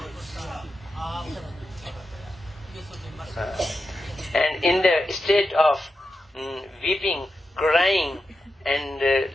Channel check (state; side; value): normal; both; correlation 0.89